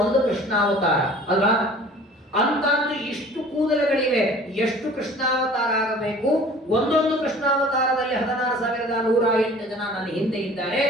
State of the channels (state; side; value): normal; both; correlation 0.47